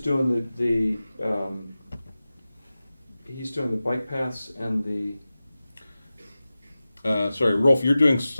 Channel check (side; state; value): both; inverted; correlation -0.96